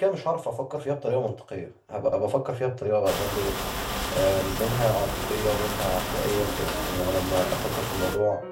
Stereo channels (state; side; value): identical; both; correlation 1.00